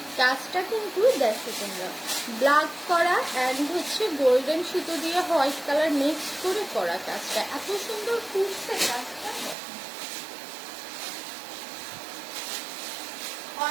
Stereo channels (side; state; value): left; drops out; at 9.6 s